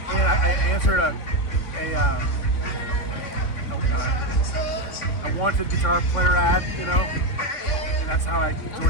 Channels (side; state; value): right; late; 3.6 ms